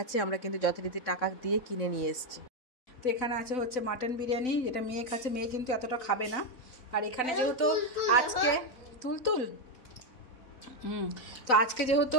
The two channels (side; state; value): right; late; 3.9 ms